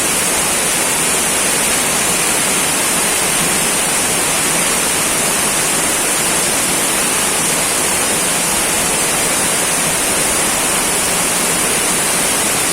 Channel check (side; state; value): both; identical; correlation 1.00